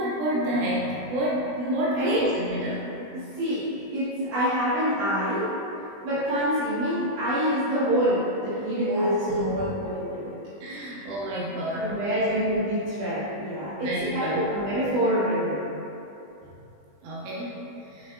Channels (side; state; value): left; late; 20 ms